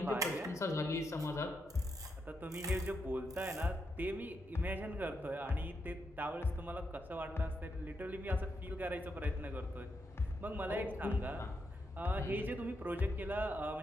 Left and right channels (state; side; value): normal; both; correlation 0.82